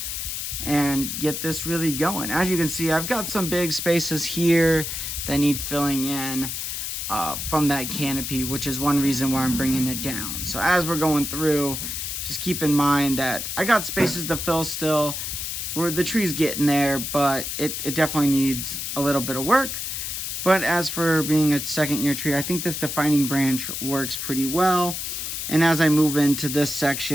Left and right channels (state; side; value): noise; left; hiss, 4 dB below the sound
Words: and get this really going. As you can see, I've got some big spaces here that need filling in from that canopy, which is one reason why I'm bringing it down. So as we're going through, just keep in mind that I got spaces to fill still. The tree's getting there, but it definitely needs a little bit of work. But as for being a second year tree, I think this defining branch works pretty well. And as I move into this